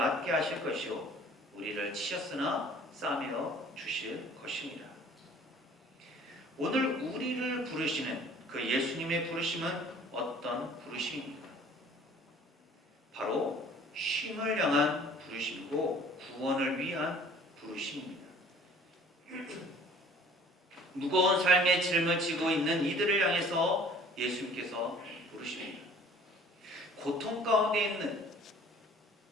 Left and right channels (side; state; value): both; normal; correlation 0.51